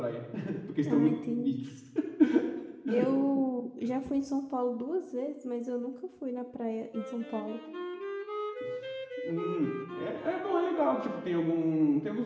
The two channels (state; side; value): identical; both; correlation 1.00